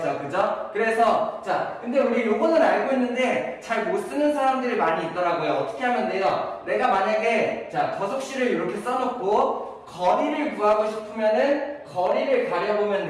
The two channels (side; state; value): both; identical; correlation 1.00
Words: 그죠? 그래서 자, 근데 우리 요거는 알고 있는데 잘 못 쓰는 사람들이 많이 있더라고요. 어떻게 하면 돼요? 내가 만약에 자, 거속시를 이렇게 써놓고 거리를 구하고 싶으면은 거리를 가려보면